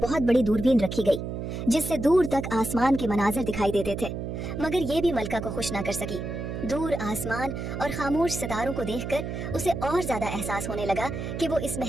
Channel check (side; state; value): right; noise; hum, 5 dB below the sound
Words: बहुत बड़ी दूरबीन रखी गई, जिससे दूर तक आसमान के मनाजिर दिखाई देते थे, मगर ये भी मलिका को खुश ना कर सकी। दूर आसमान और खामोश सितारों को देखकर उसे और ज्यादा एहसास होने लगा कि वो इस